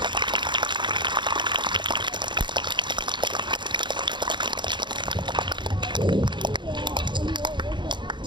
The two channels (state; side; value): late; left; 0.23 ms